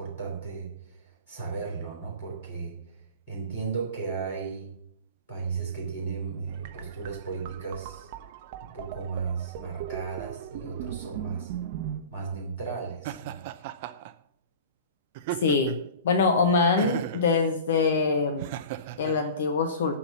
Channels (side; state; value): both; inverted; correlation -0.37